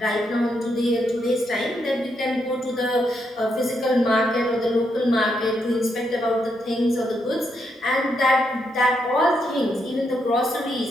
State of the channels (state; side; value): normal; both; correlation 0.79